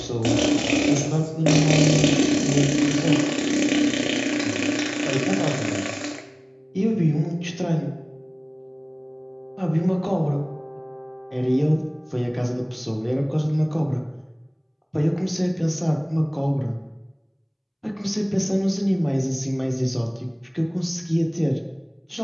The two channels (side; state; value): both; identical; correlation 1.00